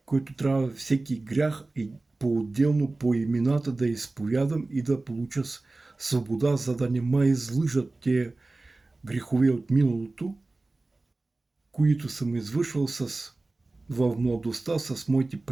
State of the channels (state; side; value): quieter; left; 3.2 dB